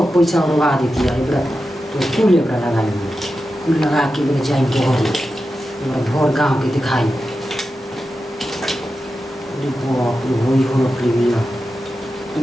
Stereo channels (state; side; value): normal; both; correlation 0.91